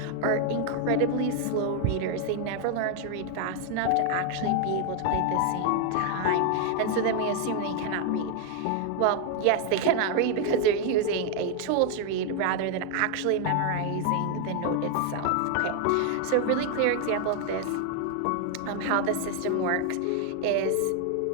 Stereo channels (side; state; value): both; different; correlation 0.00